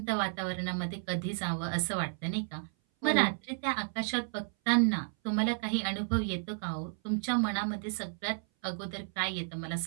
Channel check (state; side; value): silent; left; 56 dB below the other